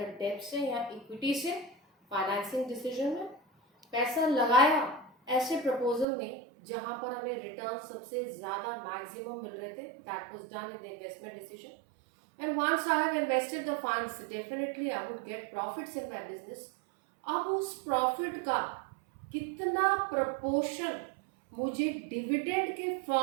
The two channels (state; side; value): drops out; left; at 6.1 s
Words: date से या इक्विटी से फाइनेंसिंग डिसीजन में, पैसा लगाया ऐसे प्रपोजल में जहां पर हमें रिटर्न सबसे ज्यादा मैक्सिमम मिल रहे थे, that was done in the investment decision. And once I have invested the funds, definitely I would get profits in my business. अब उस प्रॉफिट का कितना प्रपोर्शन मुझे डिविडेंड के